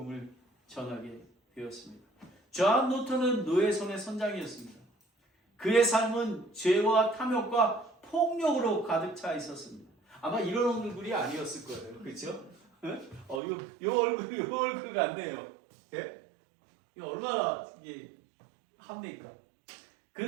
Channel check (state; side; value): drops out; left; at 13.4 s